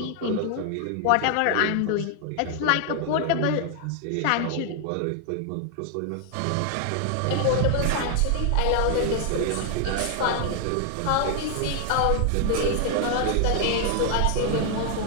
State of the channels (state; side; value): different; both; correlation 0.00